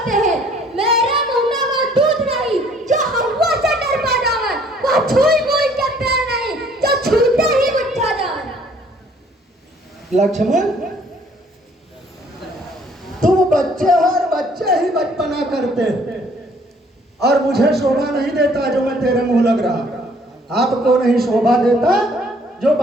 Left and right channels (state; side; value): normal; both; correlation 0.60